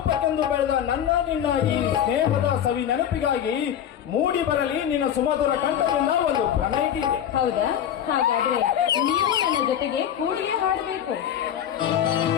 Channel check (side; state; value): right; quieter; 9.7 dB